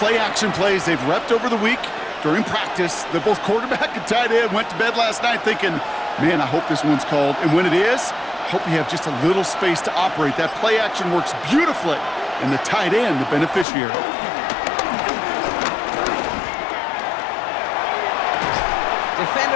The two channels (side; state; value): right; drops out; at 13.7 s